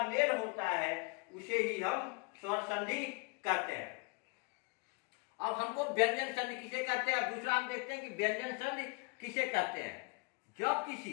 मेल होता है उसे ही हम स्वर संधि कहते हैं। अब हमको व्यंजन संधि किसे कहते हैं, दूसरा हम देखते हैं कि व्यंजन संधि किसे कहते हैं। जब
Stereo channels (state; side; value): quieter; right; 31.4 dB